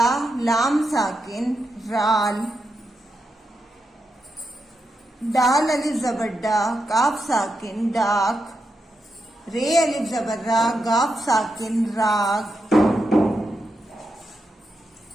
लाम साकिन राल, दाल अलिफ ज़बर डा, काफ साकिन डाक, रे अलिफ ज़बर रा, गाफ साकिन राग,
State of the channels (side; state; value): both; normal; correlation 0.86